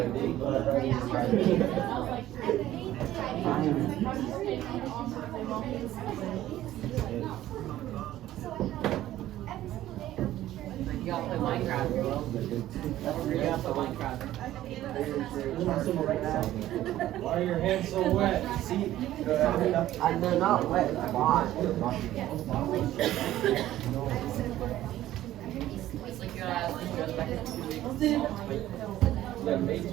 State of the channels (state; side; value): quieter; left; 13.9 dB